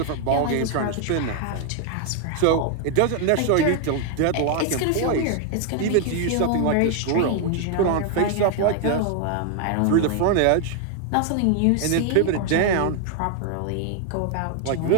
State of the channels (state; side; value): different; both; correlation 0.00